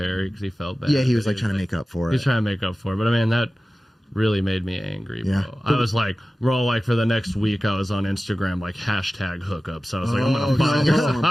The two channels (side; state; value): both; normal; correlation 0.96